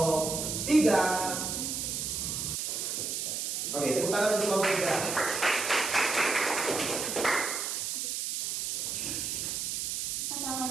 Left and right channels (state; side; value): noise; right; hiss, 2 dB below the sound